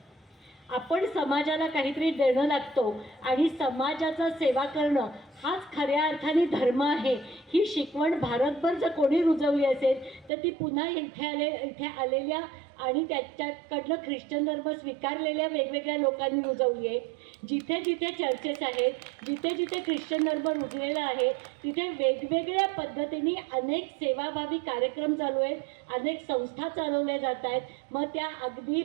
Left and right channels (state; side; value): drops out; left; at 10.3 s